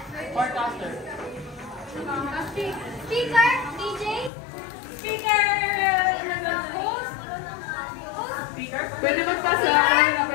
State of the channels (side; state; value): right; drops out; at 4.3 s